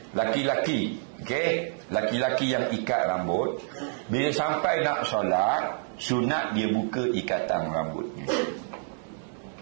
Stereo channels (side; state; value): left; silent; digital silence